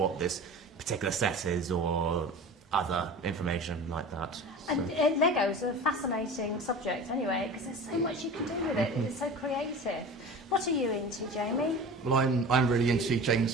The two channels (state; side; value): normal; both; correlation 0.36